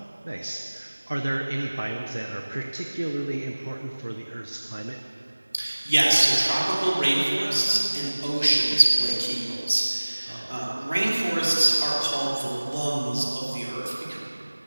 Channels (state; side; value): inverted; both; correlation -1.00